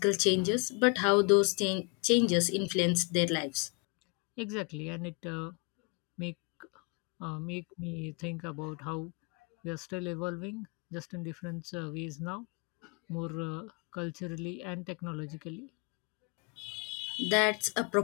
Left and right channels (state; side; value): quieter; right; 33.2 dB